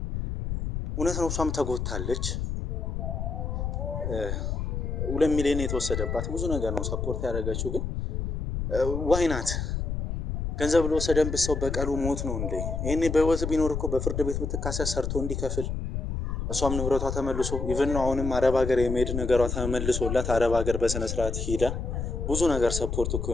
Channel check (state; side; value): noise; left; rumble, 3 dB below the sound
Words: እውነት ነው። እሷም ተጎታለች። 2 ሚሊዮን የተወሰደባት ብዙ ነገር ነው ሰፖርት ያደረገችው። ግን ዋይናት ገንዘብ ለወሰደንበት ሰው በቀሉ ሞት ነው እንዴ? ይሄኔ በህይወት ቢኖር እኮ በፍርድ ቤት ብትካሰስ ሰርቶ እንዲከፍል እሷም ንብረቷ ተመልሶ ኢቭን ነው አሁንም አረብ ሀገር የመሄድ ነገሯ ተመልሶላት አረብ ሀገር በስነ ስርዓት ሄዳ ብዙ ነገር ሰፖርት እኮ